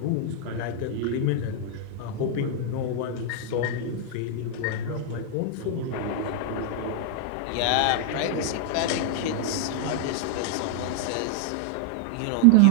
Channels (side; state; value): both; different; correlation -0.01